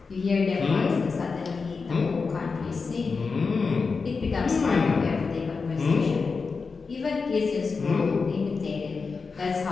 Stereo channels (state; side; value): quieter; right; 4.7 dB